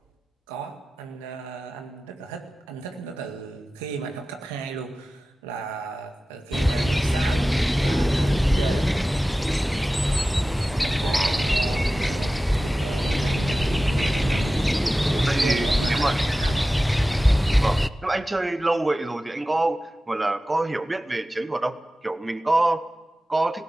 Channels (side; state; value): both; normal; correlation 0.96